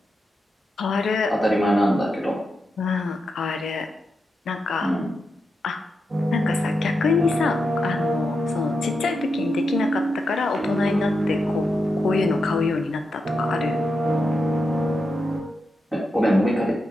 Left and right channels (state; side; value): normal; both; correlation 0.87